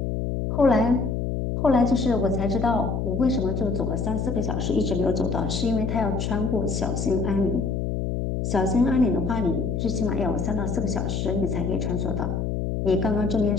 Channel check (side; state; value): left; noise; hum, 1 dB below the sound